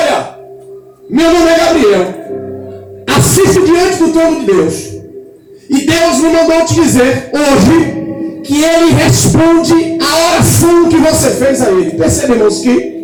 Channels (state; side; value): identical; both; correlation 1.00